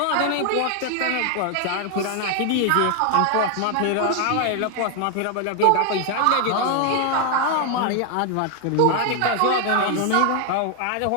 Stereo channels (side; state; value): both; different; correlation 0.00